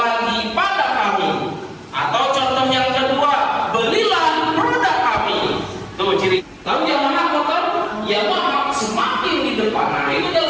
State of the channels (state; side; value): identical; both; correlation 1.00